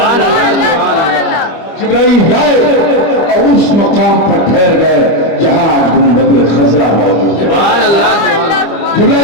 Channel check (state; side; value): late; right; 25 ms